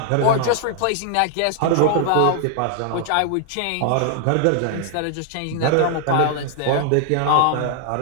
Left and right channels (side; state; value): both; different; correlation 0.00